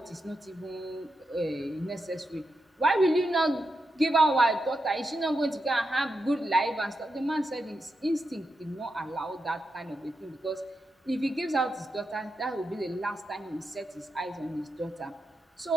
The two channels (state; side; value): normal; both; correlation 0.86